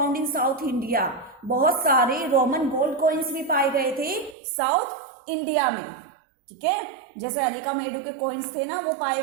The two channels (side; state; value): left; drops out; at 4.4 s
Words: in South India, बहुत सारे रोमन गोल्ड कॉइन्स भी पाए गए थे साउथ इंडिया में, ठीक है। जैसे अरिका मेडू के कॉइन्स थे ना वो पाए